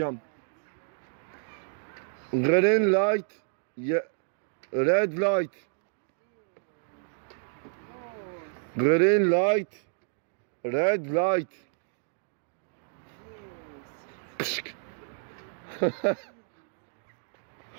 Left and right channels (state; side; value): silent; left; digital silence